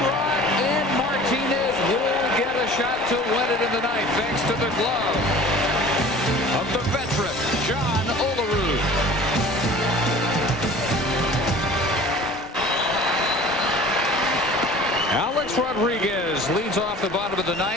and Martinez will get a shot to win it in the ninth, thanks to the glove of the veteran John Olerud. Alex Rodriguez leads off the bottom of the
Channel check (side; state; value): both; normal; correlation 0.44